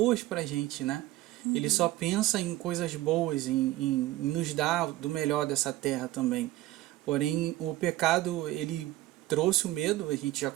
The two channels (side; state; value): left; quieter; 16.5 dB